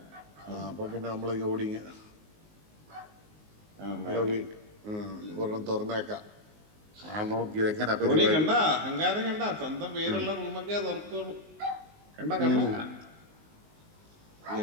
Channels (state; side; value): late; left; 19 ms